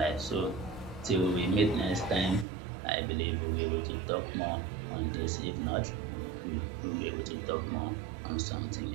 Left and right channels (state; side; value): drops out; left; at 2.5 s